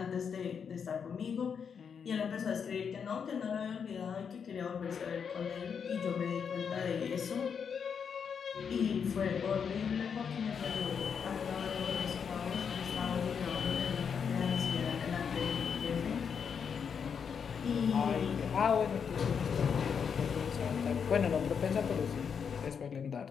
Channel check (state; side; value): quieter; right; 6.8 dB